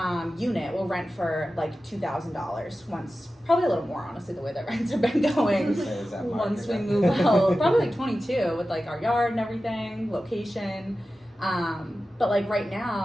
unit will rent for $2,000 once, probably a little more, honestly, the way that rents have been going. Once we move out, probably 22 with our yard and everything, location. But right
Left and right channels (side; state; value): both; normal; correlation 0.94